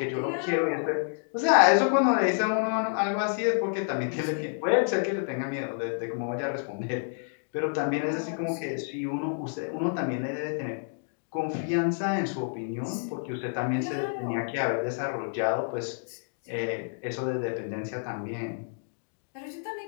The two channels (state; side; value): silent; right; digital silence